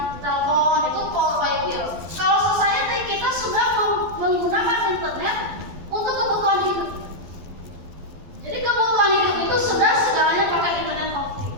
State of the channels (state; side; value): late; left; 12 ms